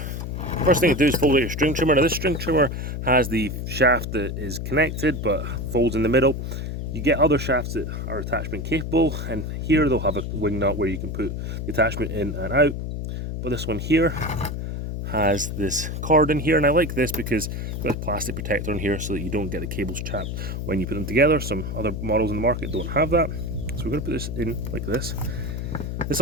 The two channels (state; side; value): noise; left; hum, 4 dB below the sound